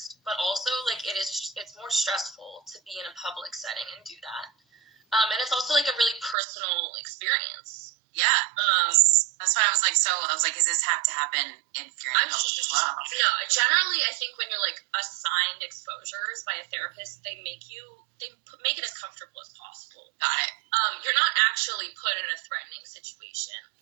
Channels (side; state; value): left; drops out; at 6.4 s